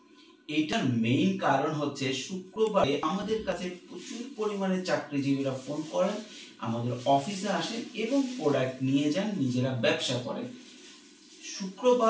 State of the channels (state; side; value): identical; both; correlation 1.00